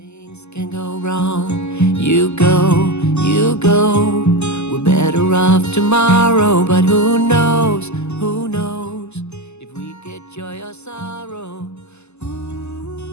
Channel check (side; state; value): right; late; 0.81 ms